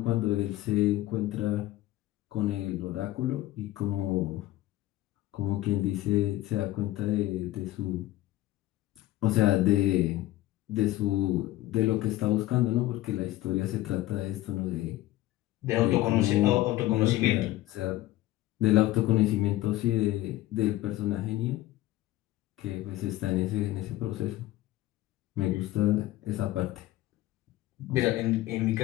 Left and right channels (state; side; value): quieter; right; 15.9 dB